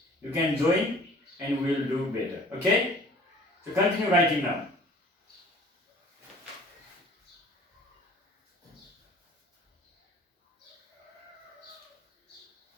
You can join and we will do better. Okay? So continue writing now.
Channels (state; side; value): normal; both; correlation 0.50